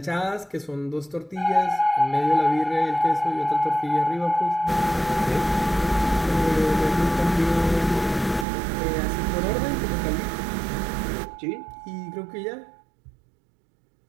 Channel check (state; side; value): drops out; left; at 8.5 s